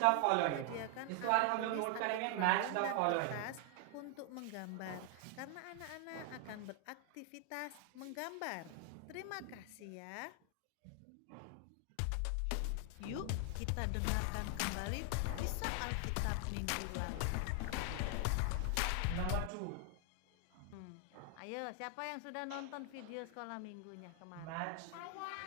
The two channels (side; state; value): both; different; correlation 0.00